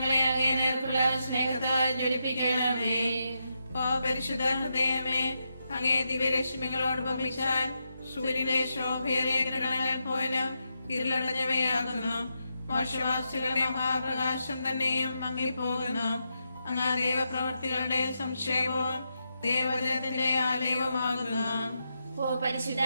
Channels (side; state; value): both; inverted; correlation -0.84